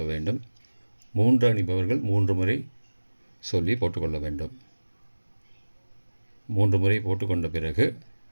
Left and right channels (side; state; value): both; inverted; correlation -1.00